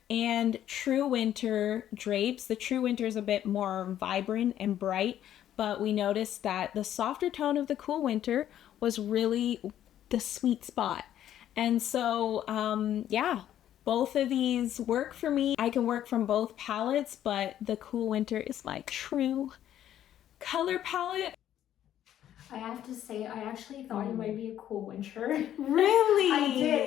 and true winter drapes. The true winter is a bit more vibrant and bright, but we noticed that the softer tone of the cool winter was really the sweet spot. And so, yeah, both of these work for me. I can work from both palettes, but the cool winter is my true color palette. I have to say, I actually thought you might be a cool winter. Really? I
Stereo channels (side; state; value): right; quieter; 11.3 dB